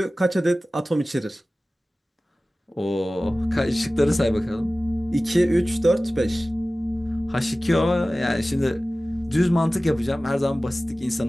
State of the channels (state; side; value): normal; both; correlation 0.97